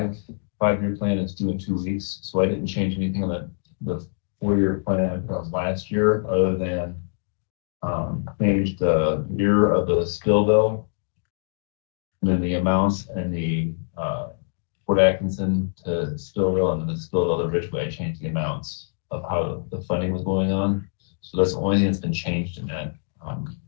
5-year plan is due in 2 weeks, so I didn't change anything on the 4-year plan from last year, other than change the year of the Spillville, and then the amounts and the Port Atkinson to Spillville, and then the Spillville to Ridgeway, I changed the amounts of how the funding was going on. So that's the only thing that's been changed in that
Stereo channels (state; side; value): silent; right; digital silence